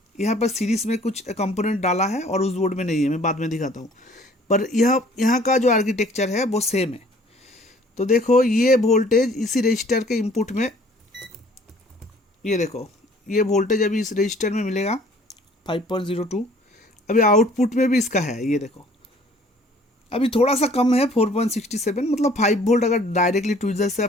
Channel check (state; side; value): normal; both; correlation 0.55